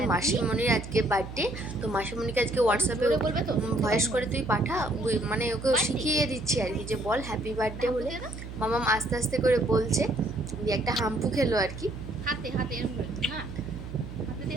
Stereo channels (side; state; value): right; noise; hum, 10 dB below the sound